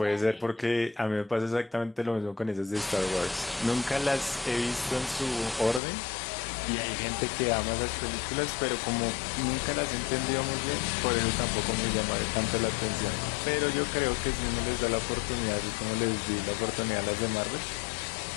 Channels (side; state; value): right; drops out; at 5.8 s